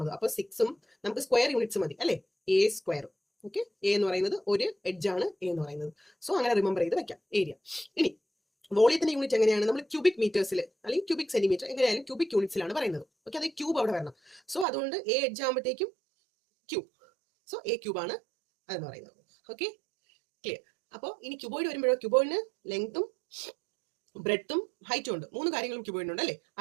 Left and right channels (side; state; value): left; drops out; at 14.7 s